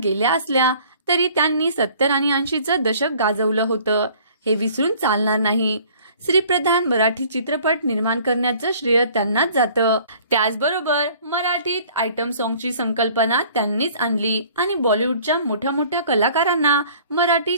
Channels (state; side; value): inverted; both; correlation -0.53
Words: गेल्या असल्या तरी त्यांनी 70 आणि 80चं दशक गाजवलं होतं, हे विसरून चालणार नाही। श्रीप्रधान मराठी चित्रपट निर्माण करण्याचं श्रेय त्यांनाच जातं। त्याचबरोबर मराठीत आयटम सॉंगची संकल्पना त्यांनीच आणली आणि बॉलिवूडच्या मोठ्या मोठ्या कलाकारांना मराठी